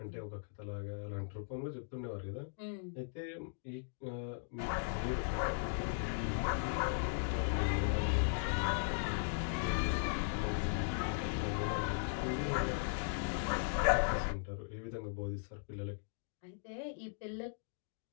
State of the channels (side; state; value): right; silent; digital silence